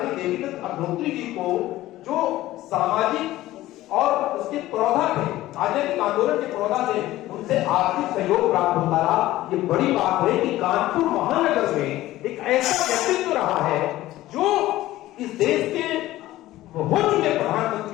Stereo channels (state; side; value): quieter; right; 15.9 dB